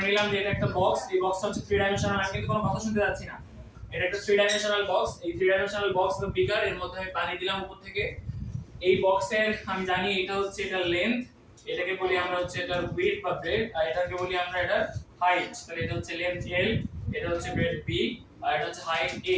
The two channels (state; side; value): identical; both; correlation 1.00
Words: নিলাম যে এটা একটা বক্স, এই বক্সটা হচ্ছে 3 ডাইমেনশনাল। আমি কিন্তু কোনো কথা শুনতে যাচ্ছি না, এটা একটা 3 ডাইমেনশনাল বক্স। এই 3 ডাইমেনশনাল বক্স বা বিকার, এর মধ্যে আমি পানি দিলাম উপর থেকে। এই বক্সের আমি জানি এটা হচ্ছে এটা লেন্থ, এটাকে বলি আমরা হচ্ছে এটার উইডথ বা ব্রেডথ, আর এটাকে বলি আমরা এটার হাইট। তাহলে এটা হচ্ছে লেন্থ L, এটা হচ্ছে ব্রেডথ B, আর এটা হচ্ছে হাইট